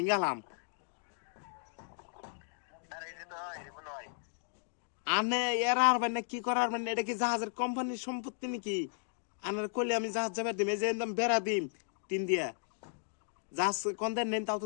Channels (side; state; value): right; silent; digital silence